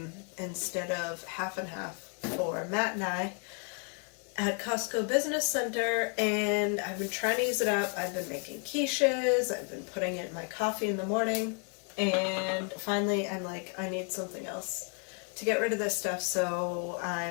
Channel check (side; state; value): right; quieter; 39.6 dB